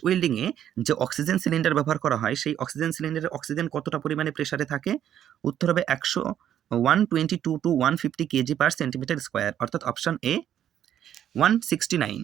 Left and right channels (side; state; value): left; quieter; 10.5 dB